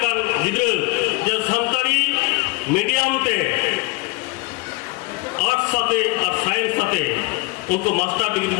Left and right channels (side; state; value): right; quieter; 24.2 dB